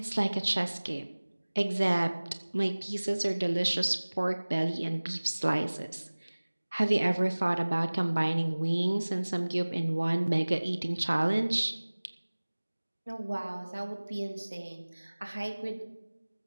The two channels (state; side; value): inverted; both; correlation -1.00